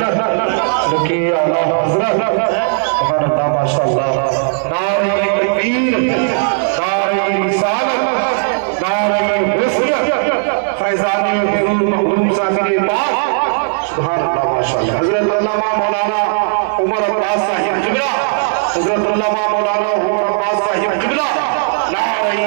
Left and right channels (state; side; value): silent; left; 57 dB below the other